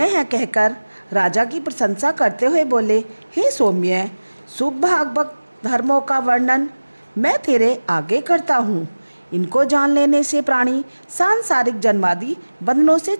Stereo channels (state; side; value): inverted; both; correlation -1.00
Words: है कहकर राजा की प्रशंसा करते हुए बोले, हे सौम्य, शुभ भागवत धर्मों का वर्णन मैं तेरे आगे करता हूँ। इनको जान लेने से प्राणी सांसारिक जन्मादि बंधनों से